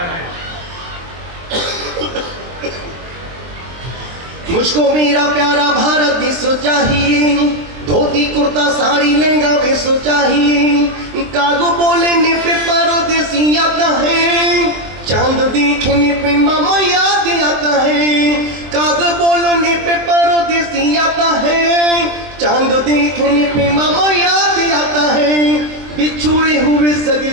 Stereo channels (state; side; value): late; left; 23 ms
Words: मुझको मेरा प्यारा भारत देश चाहिए। धोती कुर्ता साड़ी लहंगा भेष चाहिए। कागो बोलने पे परदेसी आता है। चांद देखने पे मामा याद आता है। कागो बोलने पे परदेसी आता है। चांद देखने पे मामा याद आता है। बिछुड़े हुए सगे